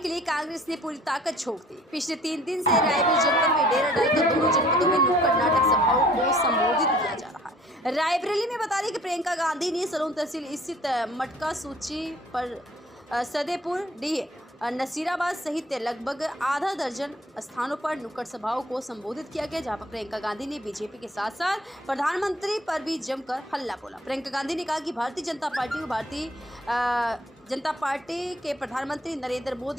लिए कांग्रेस ने पूरी ताकत झोंक दी। पिछले 3 दिन से रायबरेली जनपद में डेरा डालकर दोनों जनपदों में नुक्कड़ नाटक सभाओं को संबोधित किया जा रहा है। रायबरेली में बता दें कि प्रियंका गांधी ने सलोन तहसील स्थित मटका सूची पर सदेपुर डीह नसीराबाद सहित लगभग आधा दर्जन स्थानों पर नुक्कड़ सभाओं को संबोधित किया गया, जहां पर प्रियंका गांधी ने बीजेपी के साथ साथ प्रधानमंत्री पर भी जमकर हल्ला बोला। प्रियंका गांधी ने कहा कि भारतीय जनता पार्टी के प्रधानमंत्री नरेंद्र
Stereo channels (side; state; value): both; normal; correlation 0.55